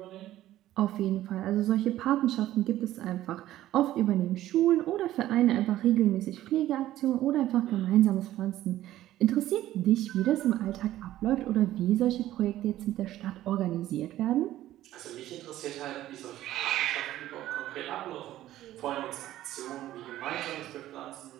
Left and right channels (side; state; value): left; quieter; 14.0 dB